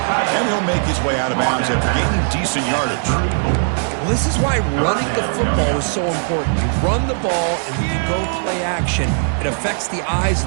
And he'll make his way out of bounds after gaining decent yardage. Well, this is why running the football is so important. You run the ball and you go play action. It affects the eyes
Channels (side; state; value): left; silent; 67 dB below the other